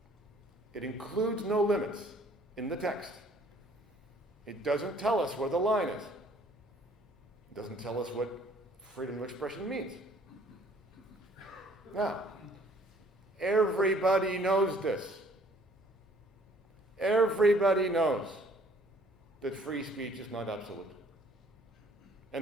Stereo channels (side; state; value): both; normal; correlation 0.59